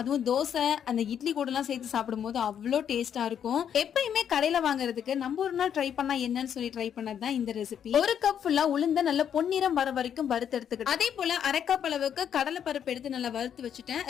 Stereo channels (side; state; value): right; quieter; 8.7 dB